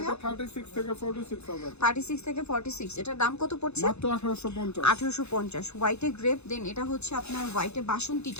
36 থেকে 46 হবে। 36 থেকে 46। এটার দাম কত পড়ছে? মাত্র 1850। 1850 হোয়াইটে গ্রেপ। দেন এটা হচ্ছে আপনার হোয়াইটে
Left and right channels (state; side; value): late; right; 0.81 ms